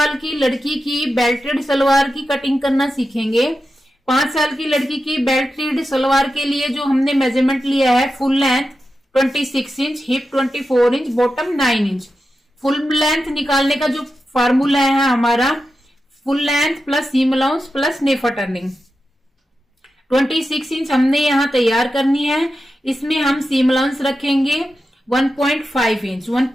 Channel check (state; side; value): normal; both; correlation 0.90